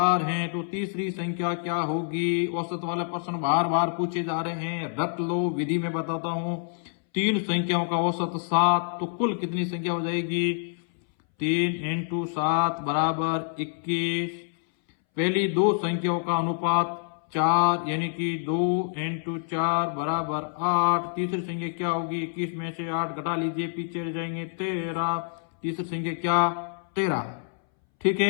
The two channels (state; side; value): silent; right; 60 dB below the other